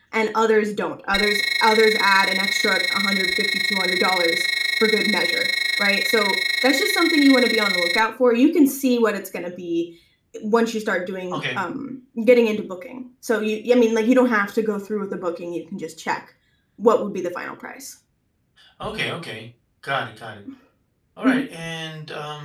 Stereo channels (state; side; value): identical; both; correlation 1.00